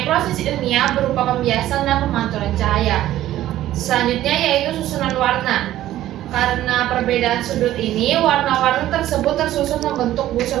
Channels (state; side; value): quieter; left; 13.7 dB